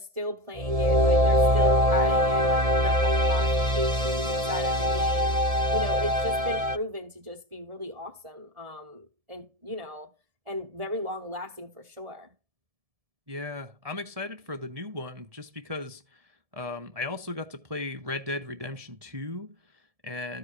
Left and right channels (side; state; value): left; late; 1.7 ms